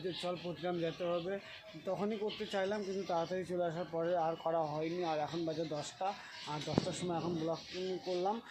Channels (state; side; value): identical; both; correlation 1.00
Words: যে চল প্রতিগ্রাম যেতে হবে। তখনই করতে চাইলাম, কিন্তু তাড়াতাড়ি চলে আসার পরে আর করা হয়নি। আর এখন বাজে 10টা, আর 10টার সময় এখন ব্লগ করলাম।